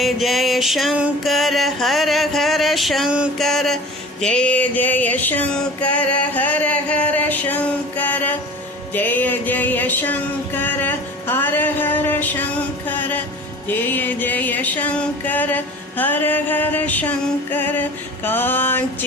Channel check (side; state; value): both; normal; correlation 0.40